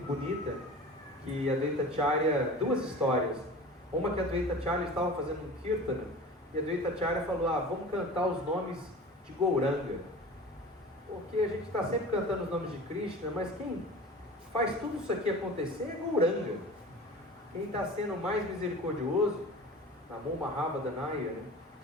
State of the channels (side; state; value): both; normal; correlation 0.37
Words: bonita, que Advaita Acharya, 2 histórias. Uma que Advaita Acharya estava fazendo um kirtana, e Advaita Acharya falou, vamos cantar os nomes de Gauranga. Porque a gente está sempre cantando os nomes de Krishna, mas quem faz tudo isso aqui acontecer é Gauranga. Quem está sendo mais misericordioso, Namo Mahabhadanaya, né?